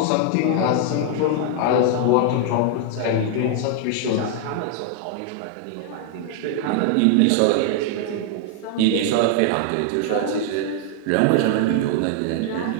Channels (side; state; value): both; different; correlation 0.00